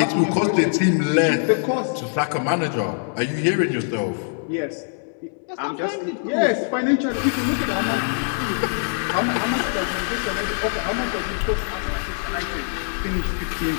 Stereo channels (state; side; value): silent; right; digital silence